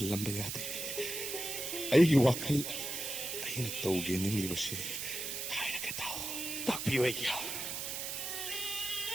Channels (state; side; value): noise; right; hiss, 4 dB below the sound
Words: ꯌꯥꯗꯦ ꯑꯩꯒꯤ ꯋꯥꯈꯜ ꯑꯩꯅ ꯇꯧꯒꯦ ꯅꯤꯡꯂꯤꯕꯁꯦ ꯍꯥꯏꯔꯒ ꯇꯥꯎ ꯇꯥꯛꯄꯤꯌꯨ ꯑꯩꯒꯤ